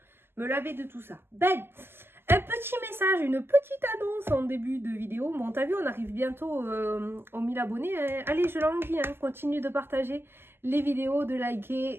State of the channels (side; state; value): left; late; 0.11 ms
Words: laver de tout ça. Ben, un petit message, une petite annonce en début de vidéo. Bon, t'as vu, on arrive bientôt aux 1000 abonnés. Hein. Allez, je l'envie, hein. Continue de partager les vidéos, de